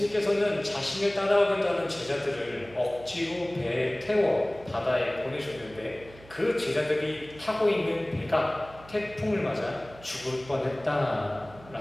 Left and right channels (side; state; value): right; noise; hum, 21 dB below the sound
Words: 자신을 따라오겠다는 제자들을 억지로 배에 태워 바다에 보내셨는데, 그 제자들이 타고 있는 배가 태풍을 맞아 죽을